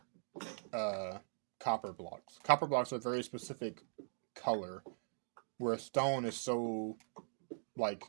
uh, copper blocks. Copper blocks are a very specific color, where stone is so, like,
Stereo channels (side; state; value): left; silent; digital silence